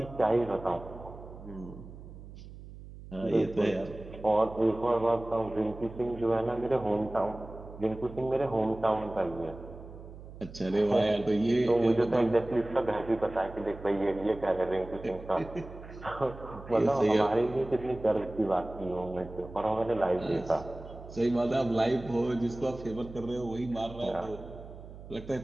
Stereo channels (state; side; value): noise; right; hum, 15 dB below the sound